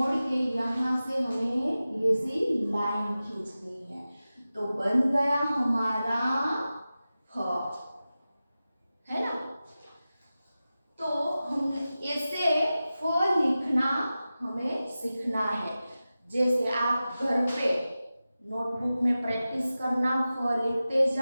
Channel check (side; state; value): both; inverted; correlation -0.95